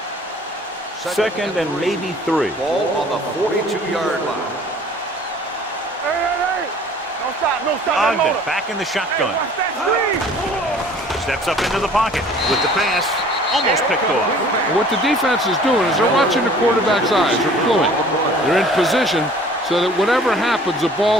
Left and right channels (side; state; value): both; normal; correlation 0.51